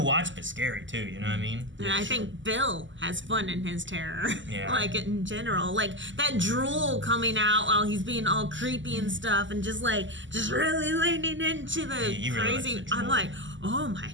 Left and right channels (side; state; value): left; late; 0.54 ms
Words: watch, but scary too, you know what I mean? And I think Bill has fun in his terror. Yeah. Like in general. Like that drool coming out while he's being all creepy and stuff and just really leaning into the he really crazy. likes the I'm drool. like, oh my